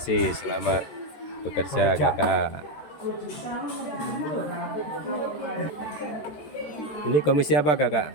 selamat bekerja kakak. Ini komisi apa kakak?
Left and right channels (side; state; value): right; late; 13 ms